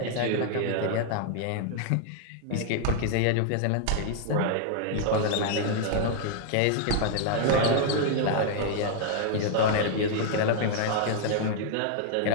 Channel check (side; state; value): both; different; correlation 0.00